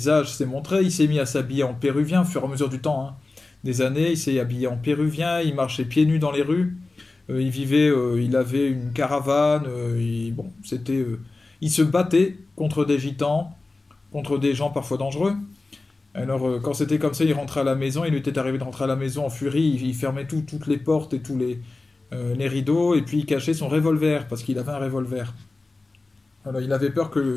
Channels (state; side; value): quieter; right; 3.4 dB